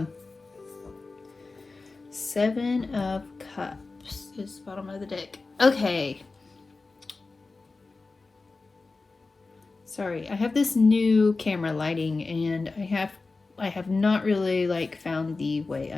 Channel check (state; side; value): quieter; right; 3.8 dB